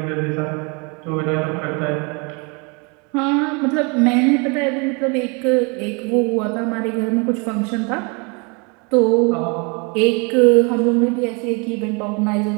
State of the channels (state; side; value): quieter; left; 32.0 dB